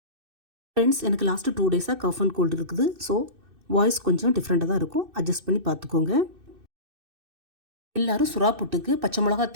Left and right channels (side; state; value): left; late; 2.6 ms